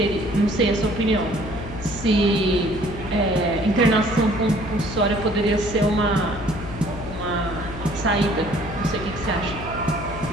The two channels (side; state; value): left; noise; hum, 10 dB below the sound